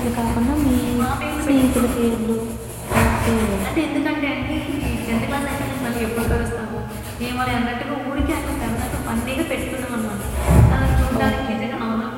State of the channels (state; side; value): identical; both; correlation 1.00